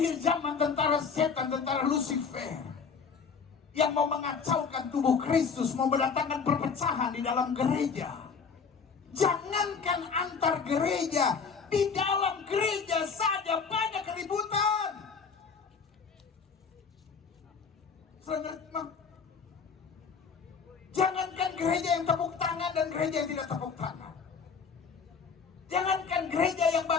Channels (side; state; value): right; quieter; 5.7 dB